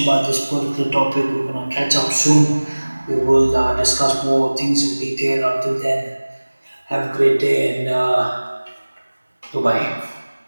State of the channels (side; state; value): both; inverted; correlation -1.00